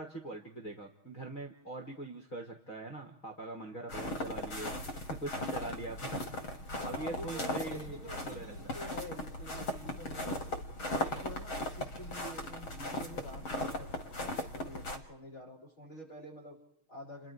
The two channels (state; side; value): late; right; 6.3 ms